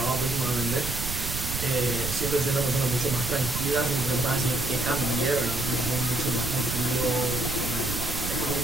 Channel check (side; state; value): right; noise; rumble, 5 dB below the sound